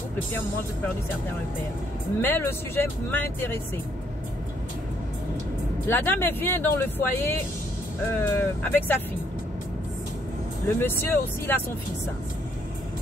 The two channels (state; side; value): normal; both; correlation 0.69